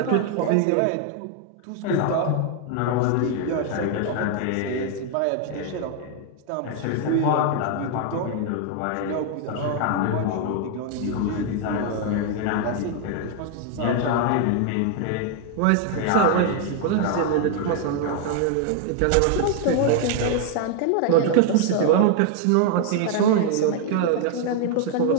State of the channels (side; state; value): both; different; correlation 0.00